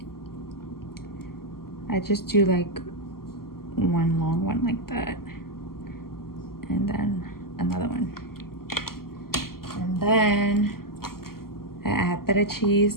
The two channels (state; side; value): late; right; 0.93 ms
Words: I just do like one long one like that. And then another one. And then I add feta